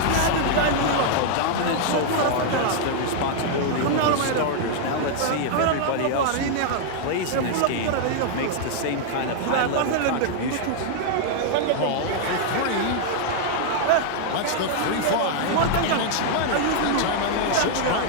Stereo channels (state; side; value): different; both; correlation -0.01